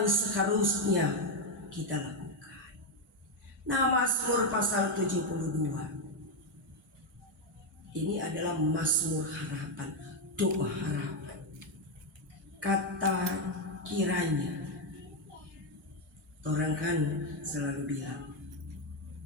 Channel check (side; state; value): both; normal; correlation 0.05